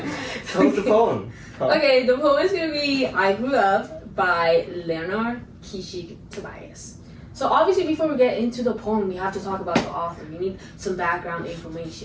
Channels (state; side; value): identical; both; correlation 1.00